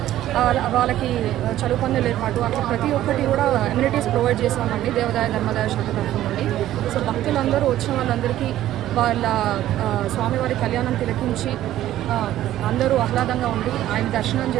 వాళ్ళకి చదువు పొందలు ఏర్పాటు అట్లా ప్రతి ఒక్కటి కూడా అమ్యూనిటీస్ ప్రొవైడ్ చేసామండి దేవాదాయ ధర్మాదాయ శాఖ తరఫు నుండి. సో భక్తులందరూ వచ్చిన వాళ్ళందరికీ వాళ్ళ స్వామివారి కళ్యాణం తిలకించి అందరూ ఆహ్లాదంగా ఉండి ఆయన దర్శనం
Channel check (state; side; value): quieter; left; 13.4 dB